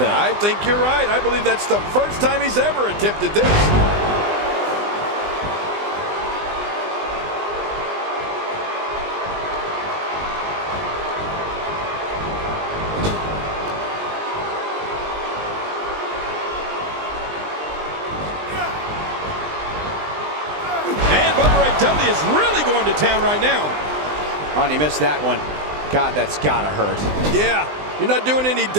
I think you're right. I believe that's the first time he's ever attempted this. W is really going to town right now. Oh, and he missed that one. God, that's gotta hurt. Yeah, you're not doing any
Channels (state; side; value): late; left; 20 ms